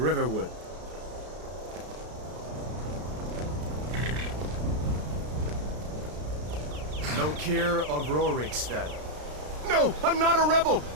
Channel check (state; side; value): late; left; 33 ms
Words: Lokir of Rorikstead. No! I'm not a rebel!